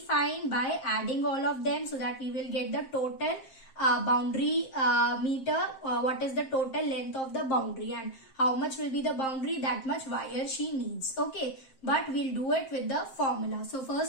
by adding all of them, so that we will get the total boundary meter, what is the total length of the boundary, and how much will be the boundary, that much wire she needs, okay. But we'll do it with the formula. So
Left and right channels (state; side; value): late; right; 7.6 ms